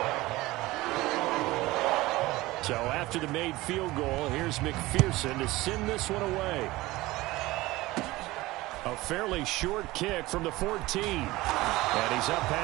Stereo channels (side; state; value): left; quieter; 19.3 dB